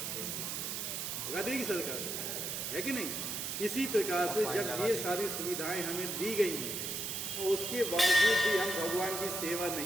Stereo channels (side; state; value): right; noise; hiss, 3 dB below the sound